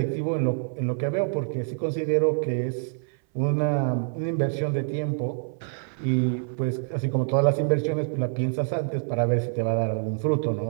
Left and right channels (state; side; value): silent; left; 59 dB below the other